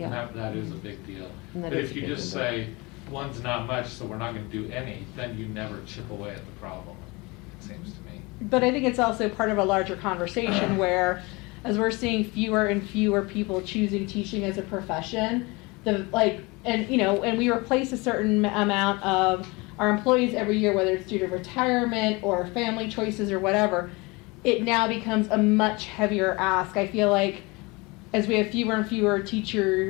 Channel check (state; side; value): quieter; right; 25.4 dB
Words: And that is a big deal. And that But is if a you big just deal. say, one's not much, so we're not gonna do any, then you never chip away at the problem, it seems to me. But I think it's also part of a larger conversation where, as we're seeing fewer and fewer people choosing teaching as a profession, and we replace a certain amount of our employees every year, whether it's due to retirement or family choices or whatever, it now becomes a much heavier ask. I feel like as we have fewer and fewer